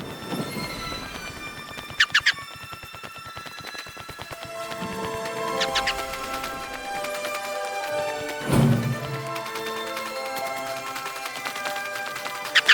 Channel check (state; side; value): identical; both; correlation 1.00